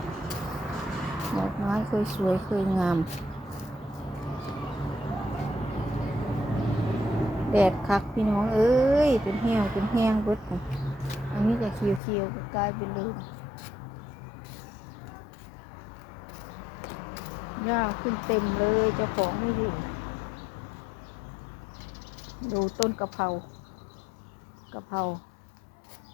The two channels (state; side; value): drops out; right; at 12.0 s